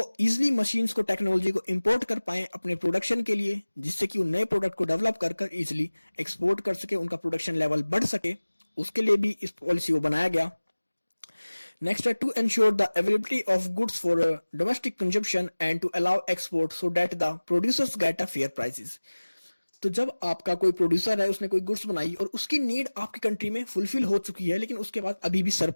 इजिली मशीन्स को, टेक्नोलॉजी को इंपोर्ट कर पाए अपने प्रोडक्शन के लिए, जिससे कि वो नए प्रोडक्ट को डेवलप कर कर इजिली एक्सपोर्ट कर सके, उनका प्रोडक्शन लेवल बढ़ सके, उसके लिए भी इस पॉलिसी को बनाया गया। नेक्स्ट है to ensure the availability of goods for domestic consumption and to allow export so that the producers get a fair prices. तो जब आपका कोई प्रोड्यूसर है, उसने कोई गुड्स बनाई और उसकी नीड आपकी कंट्री में फुलफिल हो चुकी है, लेकिन उसके बाद अभी भी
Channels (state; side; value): inverted; both; correlation -1.00